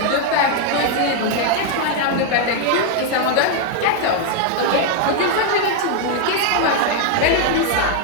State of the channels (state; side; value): different; both; correlation 0.00